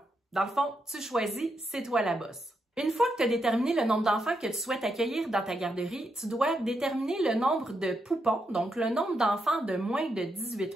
Dans le fond, tu choisis, c'est toi la boss. Une fois que tu as déterminé le nombre d'enfants que tu souhaites accueillir dans ta garderie, tu dois déterminer le nombre de poupons, donc le nombre d'enfants de moins de 18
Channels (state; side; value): normal; both; correlation 0.82